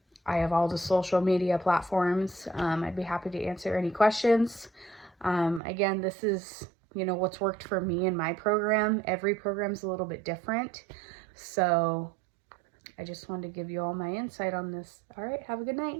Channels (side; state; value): left; drops out; at 5.6 s